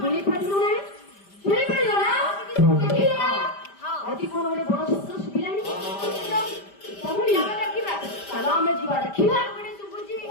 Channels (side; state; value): right; late; 5.1 ms